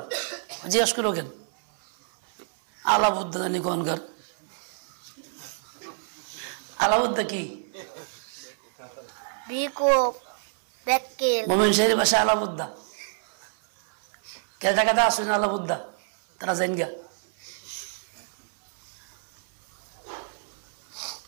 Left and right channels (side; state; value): left; silent; 60 dB below the other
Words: জিজ্ঞাসা করো কেন? আলাবুদ্দা জানি কোনকার আলাবুদ্দা কি? মোমেন শাহের বাসা আলাবুদ্দা। কেদা কেদা আসুন আলাবুদ্দা, তারা জান গা।